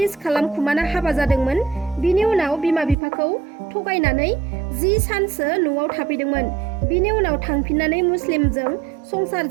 खालामखुमाना हाबा जादोंमोन। बिनि उनाव बिमा बिफाखौ थगायनानै 10 सानसो न'आव थाफैदोंमोन। बिनि उनाव थांफिननानै मुस्लिमजों संसार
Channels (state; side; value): drops out; left; at 3.0 s